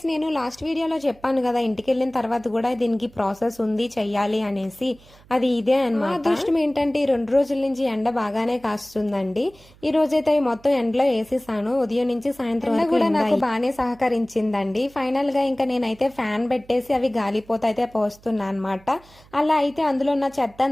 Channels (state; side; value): noise; right; hum, 26 dB below the sound